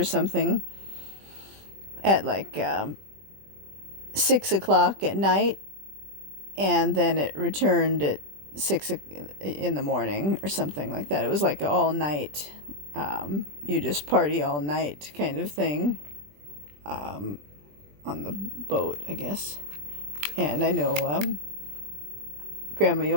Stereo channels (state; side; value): late; left; 20 ms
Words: something at like 6 o'clock at night, and then it returned at 6 in the morning or something like that. It was like all night. You just party all night kind of thing on the boat, I guess. And I know Grandma